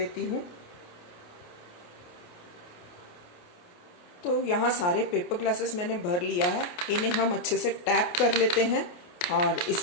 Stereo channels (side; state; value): right; late; 28 ms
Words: हूँ। तो यहाँ सारे पेपर ग्लासेस मैंने भर लिया है। इन्हें हम अच्छे से टैप कर लेते हैं और